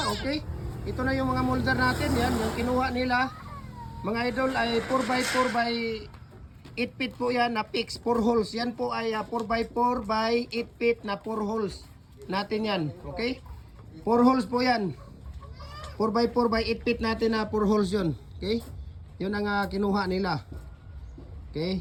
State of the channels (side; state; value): both; identical; correlation 1.00